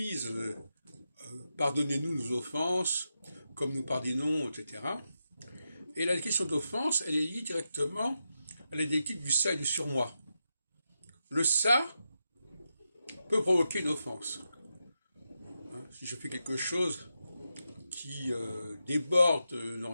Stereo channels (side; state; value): both; inverted; correlation -0.87